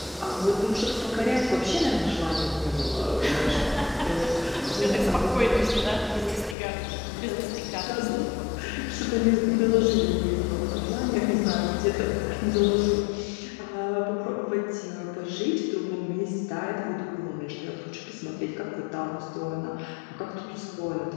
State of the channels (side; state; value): right; drops out; at 6.6 s